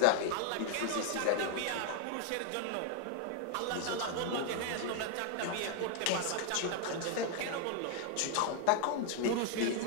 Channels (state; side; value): different; both; correlation 0.00